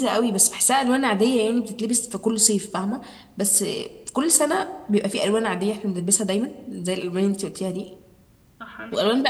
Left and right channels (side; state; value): both; identical; correlation 1.00